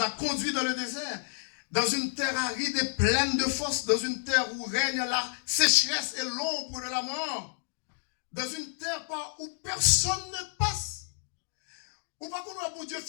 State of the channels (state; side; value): silent; right; digital silence